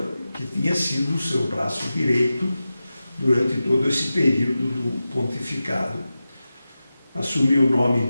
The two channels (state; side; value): inverted; both; correlation -0.94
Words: tinha sido o seu braço direito durante todo esse período do pontificado. Assumiu o